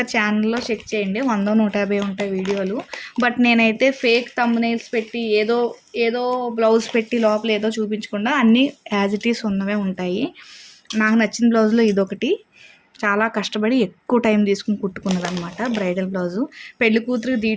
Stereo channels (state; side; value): identical; both; correlation 1.00